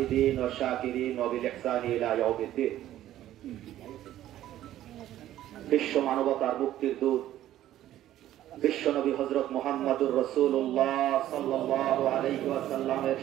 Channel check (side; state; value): left; quieter; 13.0 dB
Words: والشاكرين وبالإحسان إلى يوم الدين বিশ্ব মানবতার মুক্তির দূত বিশ্বনবী হযরত মুহাম্মদুর রাসূলুল্লাহ সাল্লাল্লাহু আলাইহি ওয়াসাল্লামের